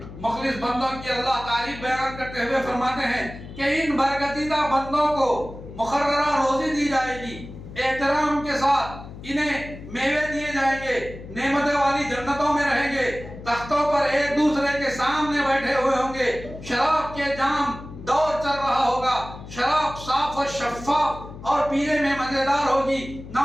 مخلص بندوں کی اللہ تعریف بیان کرتے ہوئے فرماتے ہیں کہ ان برگزیدہ بندوں کو مقررہ روزی دی جائے گی، احترام کے ساتھ انہیں میوے دیے جائیں گے، نعمتیں والی جنتوں میں رہیں گے، تختوں پر ایک دوسرے کے سامنے بیٹھے ہوئے ہوں گے، شراب کے جام دور چل رہا ہوگا، شراب صاف اور شفاف اور پینے میں مزیدار ہوگی، نہ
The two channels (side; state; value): left; noise; hum, 14 dB below the sound